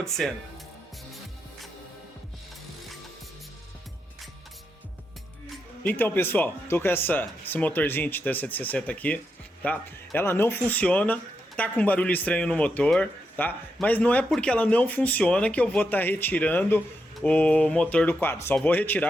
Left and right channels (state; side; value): normal; both; correlation 0.84